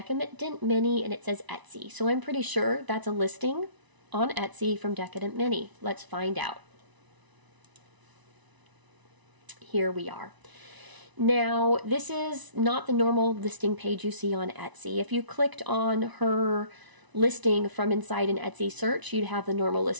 Mini and it says Etsy. So I'm pretty sure that's a listing on Etsy from Decadent Mini. Let's find out. Here we are. Now, this is not the normal listing page you see on Etsy. If you clicked on her listing from inside an Etsy search, you'd have the normal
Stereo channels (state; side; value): late; left; 1.0 ms